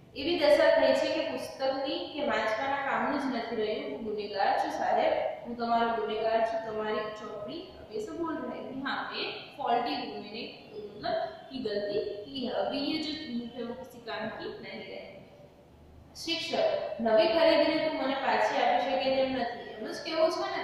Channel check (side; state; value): both; identical; correlation 1.00